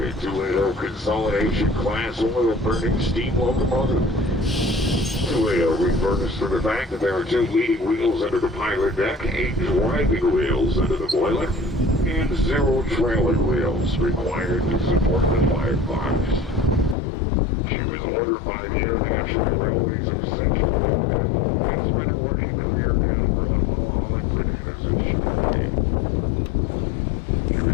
280 consolidation class oil-burning steam locomotive. 280 refers to the fact that there are 2 leading wheels under the pilot deck, 8 driving wheels under the boiler, and 0 trailing wheels required to support the firebox. She was ordered by the International Railways of Central America and spent her working career down in Guatemala hauling bananas and sugarcane. She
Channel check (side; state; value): right; drops out; at 16.9 s